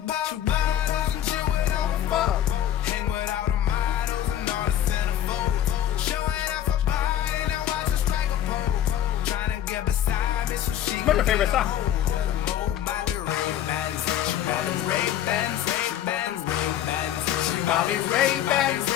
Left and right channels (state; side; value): quieter; right; 11.1 dB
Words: What's your favorite song?